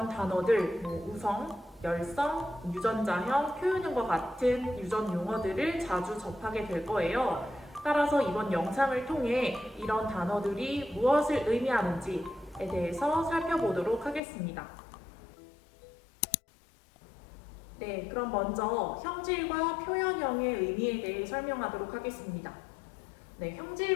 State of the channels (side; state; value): right; drops out; at 14.2 s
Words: 단어들, 우성, 열성, 유전자형, 표현형과 같은 유전 용어들을 자주 접하게 될 거예요. 따라서 이번 영상을 통해 이런 단어들이 무엇을 의미하는지에 대해서 살펴보도록 하겠습니다. 네, 그럼 먼저 형질과 표현형의 의미에 대해 설명하도록 하겠습니다. 네,